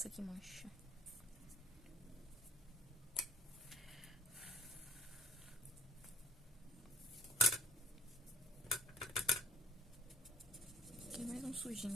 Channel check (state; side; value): normal; both; correlation 0.54